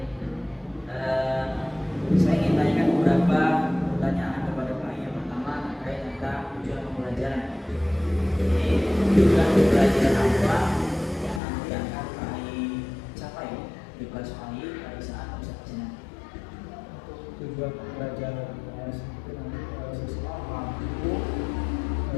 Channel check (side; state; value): right; drops out; at 11.4 s